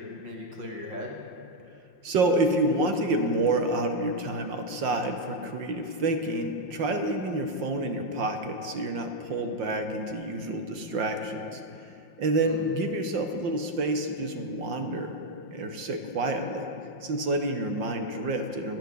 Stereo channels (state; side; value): late; left; 5.7 ms